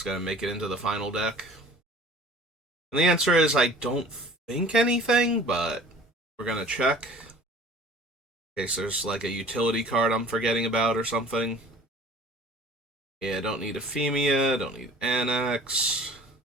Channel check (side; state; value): both; normal; correlation 0.47